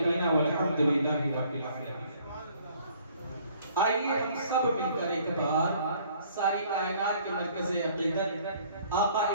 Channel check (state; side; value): inverted; both; correlation -0.59